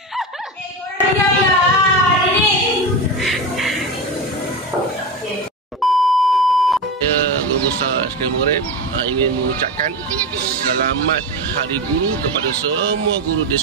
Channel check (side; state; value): both; normal; correlation 0.20